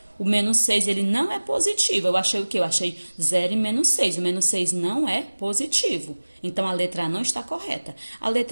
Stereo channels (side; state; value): both; inverted; correlation -1.00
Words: O menos 6, ele não é positivo. Eu achei o quê? Eu achei 0 e menos 6. O menos 6 não é positivo. Então, a letra A não está correta. A